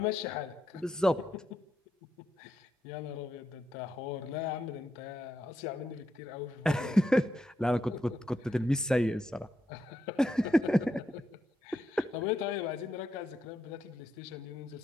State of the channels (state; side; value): normal; both; correlation 0.82